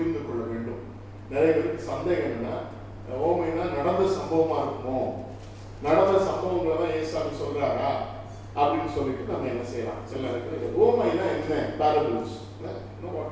கொள்ள வேண்டும். நிறைய பேருக்கு சந்தேகம் என்னன்னா, ஓமைனா நடந்த சம்பவமா இருக்குமோ, நடந்த சம்பவங்களை தான் ஏசாமி சொல்றாரா அப்படின்னு சொல்லிட்டு நம்ம என்ன செய்யலாம். சில நேரத்தில் ஓமைனா என்ன? பேரபிள்ஸ்.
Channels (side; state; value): both; identical; correlation 1.00